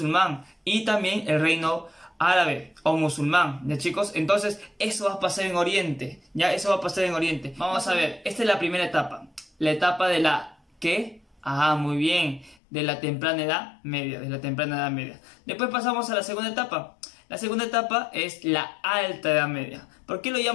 Y también el reino árabe o musulmán, ¿ya, chicos? Entonces, eso va a pasar en Oriente. Ya, eso va a pasar en Oriente. Vamos a ver, esta es la primera etapa. La etapa de la... ¿Qué? Muy bien. De la temprana edad media. Después pasamos a la segunda etapa. La segunda etapa es la alta edad media. ¿Por qué lo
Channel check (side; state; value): right; drops out; at 12.6 s